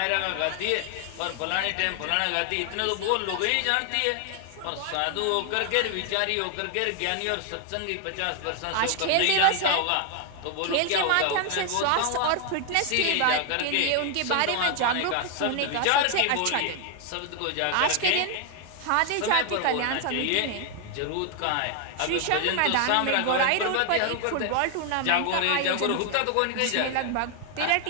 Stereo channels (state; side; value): different; both; correlation 0.00